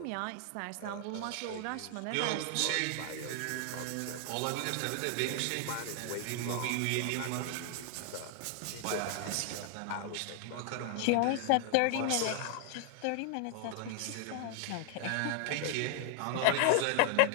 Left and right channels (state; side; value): different; both; correlation 0.00